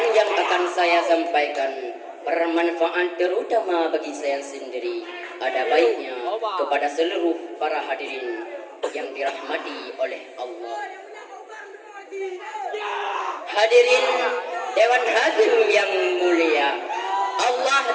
yang akan saya sampaikan bermanfaat terutama bagi saya sendiri. Ada baiknya kepada seluruh para hadirin yang dirahmati oleh Allah. Hadirin Dewan Hakim yang mulia, Allah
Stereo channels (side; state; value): both; identical; correlation 1.00